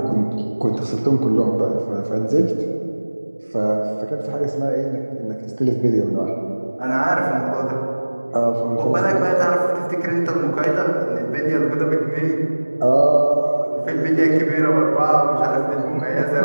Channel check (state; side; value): inverted; both; correlation -1.00